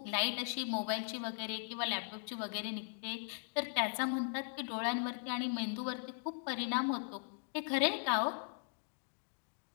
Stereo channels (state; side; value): silent; right; digital silence